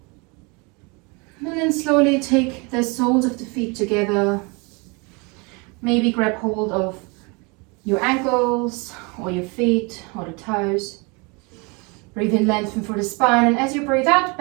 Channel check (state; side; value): quieter; left; 29.5 dB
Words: And then slowly take the soles of the feet together. Maybe grab hold of your ankles or your feet or the toes. Breathe in, lengthen for the spine. And as you breathe out,